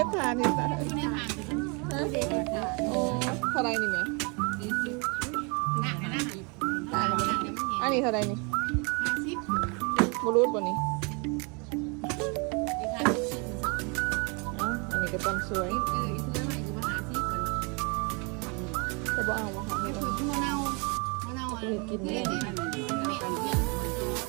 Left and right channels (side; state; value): left; quieter; 32.4 dB